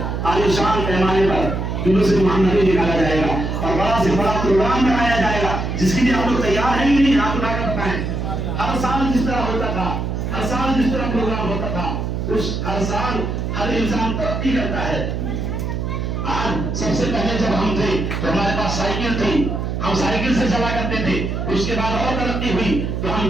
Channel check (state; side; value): noise; right; hum, 2 dB below the sound